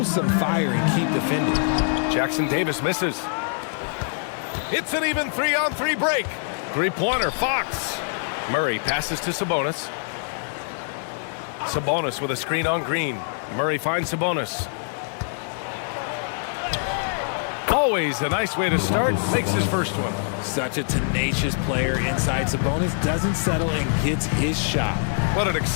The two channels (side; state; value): right; silent; 61 dB below the other